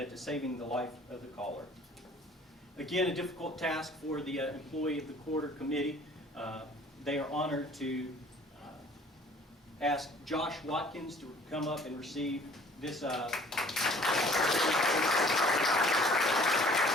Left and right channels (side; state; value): both; normal; correlation 0.53